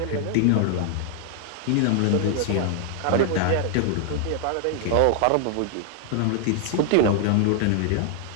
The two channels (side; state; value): both; different; correlation 0.00